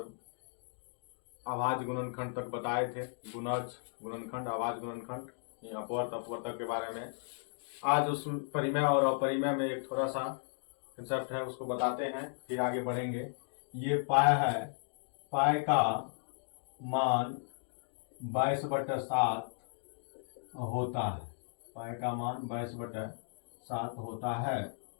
आभाज्य गुणनखंड तक बताए थे। गुणज गुणनखंड, आभाज्य गुणनखंड, अपवर्त अपवर्तक के बारे में। आज उस परिमेय और अपरिमेय में एक थोड़ा सा कंसेप्ट है, उसको बताते हैं, फिर आगे बढ़ेंगे। ये पाई है, पाई का मान 22/7 होता है। पाई का मान 22/7 होता है।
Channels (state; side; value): silent; right; digital silence